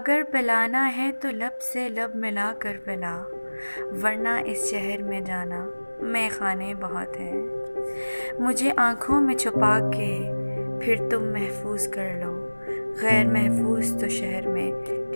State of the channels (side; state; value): both; inverted; correlation -1.00